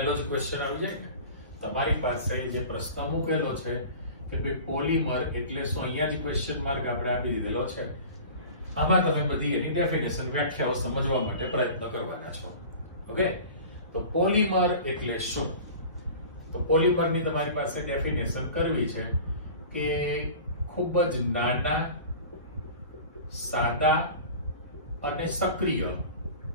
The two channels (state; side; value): inverted; both; correlation -0.39